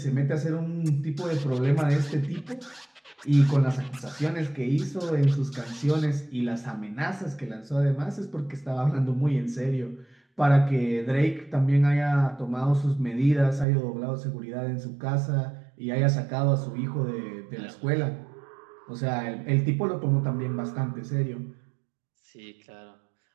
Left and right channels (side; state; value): left; drops out; at 13.7 s